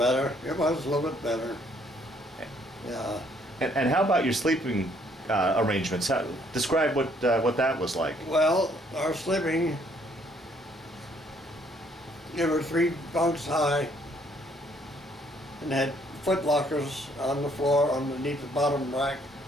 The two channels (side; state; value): both; normal; correlation 0.65